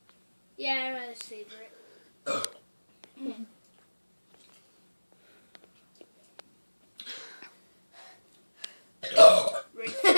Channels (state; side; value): inverted; both; correlation -1.00